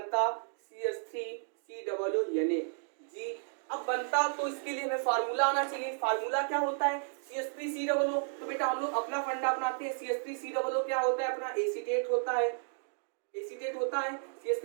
CH3COO Na जी। अब बनता तो इसके लिए हमें फार्मूला आना चाहिए, फार्मूला क्या होता है, CH3COO। तो बेटा हम लोग अपना फंडा अपनाते हैं, CH3COO क्या होता है अपना, एसीटेट होता है, एसीटेट होता है।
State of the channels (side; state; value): left; silent; digital silence